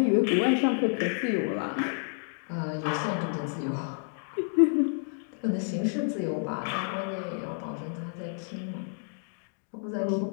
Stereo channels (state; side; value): silent; right; 58 dB below the other